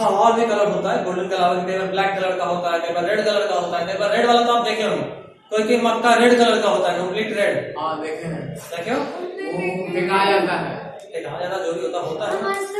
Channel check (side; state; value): both; identical; correlation 1.00